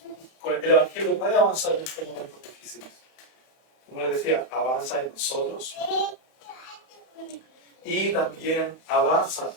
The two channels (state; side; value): late; right; 31 ms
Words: El Evangelio puede avanzar en estos momentos difíciles. Como les decía, avanza en nosotros y también avanza